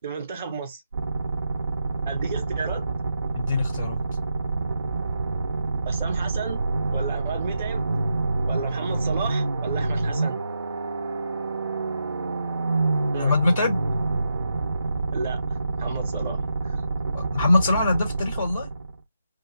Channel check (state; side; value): inverted; both; correlation -0.85